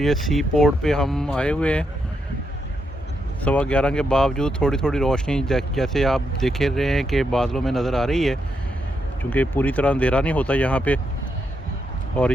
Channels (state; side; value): normal; both; correlation 0.81